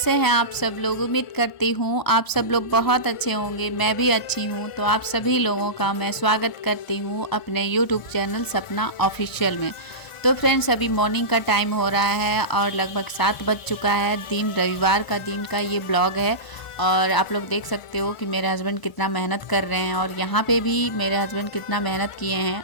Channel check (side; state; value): right; late; 1.0 ms